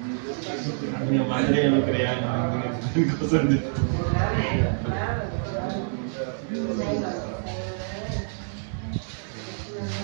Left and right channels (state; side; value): silent; left; digital silence